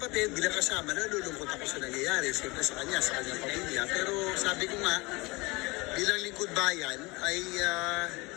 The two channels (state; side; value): quieter; right; 24.5 dB